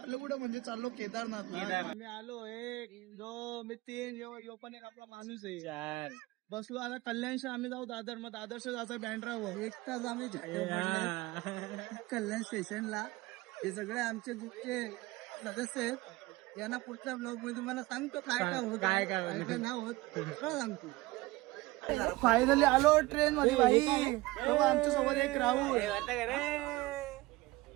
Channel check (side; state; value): left; quieter; 20.2 dB